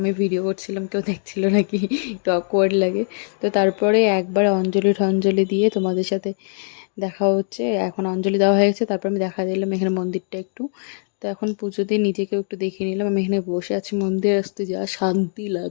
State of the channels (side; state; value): right; silent; digital silence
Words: ভিডিও করছিলাম কেউ দেখছিল নাকি, একটু অকওয়ার্ড লাগে। তো তারপরে একবার অঞ্জলি টঞ্জলি দিয়ে তোমাদের সাথে দেখা হচ্ছে। এখন অঞ্জলি দেওয়া হয়ে গেছে, তারপর আমি দেখা দিলাম এখানে মন্দিরটা একটু। তো এখন পুজো দিয়ে নিজেকেও একটু দেখিয়ে নিলাম। আমি এখানে বসে আছি, মন্দিরে আসতে যা শান্তি